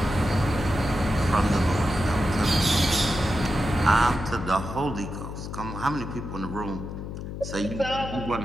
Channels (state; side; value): noise; left; hum, 8 dB below the sound